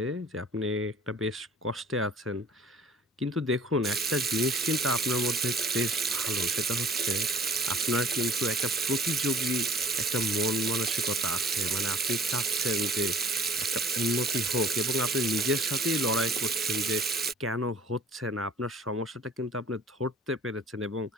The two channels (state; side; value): normal; both; correlation 0.50